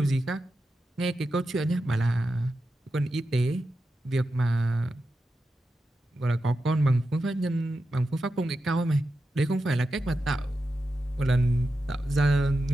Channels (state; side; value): normal; both; correlation 0.89